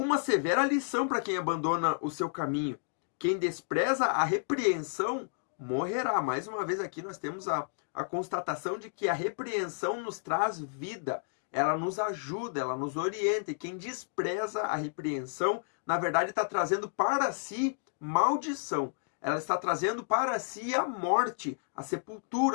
severa lição para quem abandona o seu caminho. Quem despreza a repreensão morrerá. Mais uma vez aqui nós temos a constatação de que a repreensão nos traz vida. Ela nos ajuda, ela nos orienta. E quem despreza a repreensão, na verdade, está trazendo para si maldição. Ela está trazendo para si a morte, a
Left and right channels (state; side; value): silent; right; digital silence